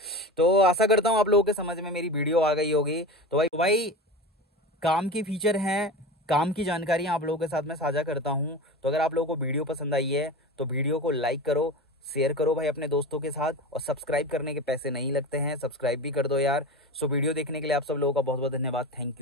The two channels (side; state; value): both; normal; correlation 0.28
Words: तो आशा करता हूँ आप लोगों के समझ में मेरी वीडियो आ गई होगी। तो भाई काम की फीचर हैं, काम की जानकारियां आप लोगों के साथ में साझा करता हूं। तो अगर आप लोगों को वीडियो पसंद आई है तो वीडियो को लाइक करो, शेयर करो भाई अपने दोस्तों के साथ, और सब्सक्राइब करने के पैसे नहीं लगते हैं, सब्सक्राइब भी कर दो यार। सो वीडियो देखने के लिए आप सब लोगों का बहुत बहुत धन्यवाद। Thank